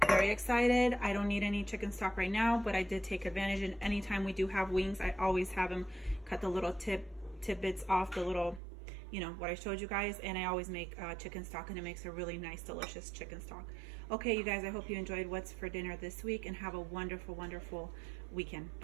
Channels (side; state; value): left; drops out; at 8.6 s